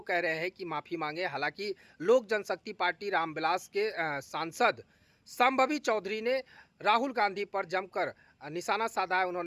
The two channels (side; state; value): both; identical; correlation 1.00